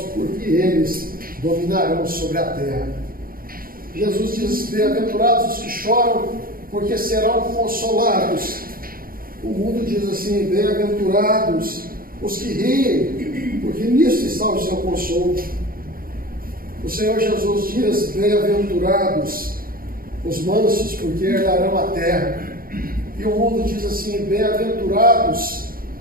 porque eles dominarão sobre a terra. Jesus diz: bem-aventurados os que choram, porque serão consolados. O mundo diz assim: bem-aventurados os que riem, porque nisso está o seu consolo. O Senhor Jesus diz: bem-aventurados os mansos, porque herdarão a terra. E o mundo diz assim: bem-aventurados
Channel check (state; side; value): late; left; 0.42 ms